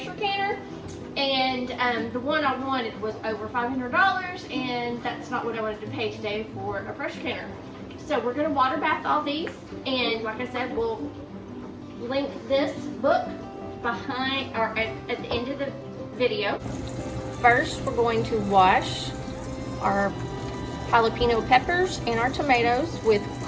canner. And the one I wanted was over $500, and that's not what I wanted to pay today for a pressure canner. So we're going to water bath all these, and like I said, we'll link this book behind or at the end of the video. First, we're going to wash our jalapeno peppers and our tomatoes with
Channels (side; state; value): both; identical; correlation 1.00